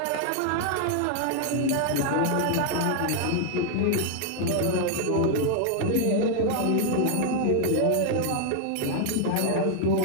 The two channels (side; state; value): both; different; correlation 0.00